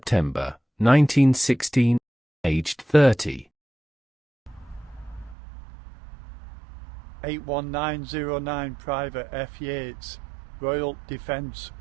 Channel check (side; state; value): left; drops out; at 5.4 s